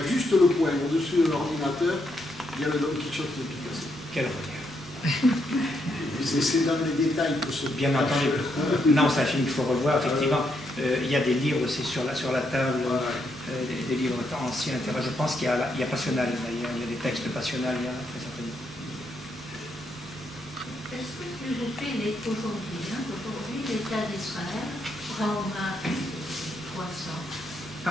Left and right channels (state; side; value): noise; left; hum, 25 dB below the sound